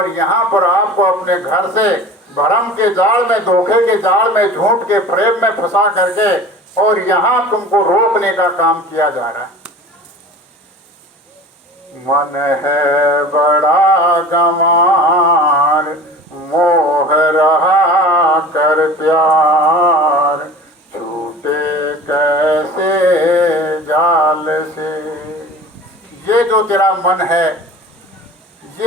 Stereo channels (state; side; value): normal; both; correlation 0.39